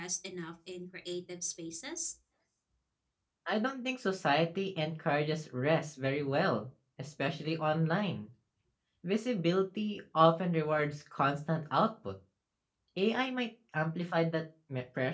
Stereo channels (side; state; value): both; identical; correlation 1.00